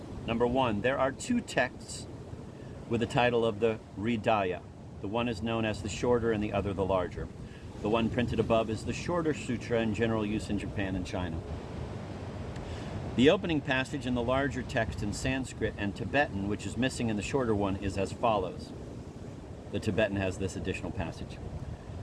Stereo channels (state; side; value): identical; both; correlation 1.00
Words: Number 1, there are 2 texts with the title of the Hridaya. The one is known as the shorter and the other the larger. The one printed above is the shorter sutra in general use in Japan and China. The opening passage in the larger text in Sanskrit and Tibetan, which is missing in the shorter one, is as follows. The Tibetan has this additional passage.